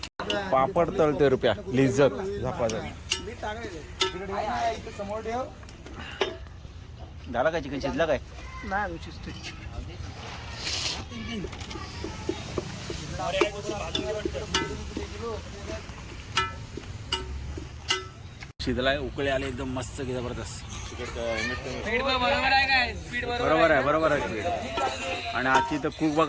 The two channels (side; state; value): both; identical; correlation 1.00